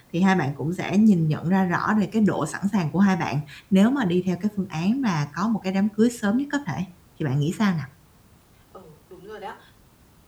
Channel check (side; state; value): both; identical; correlation 1.00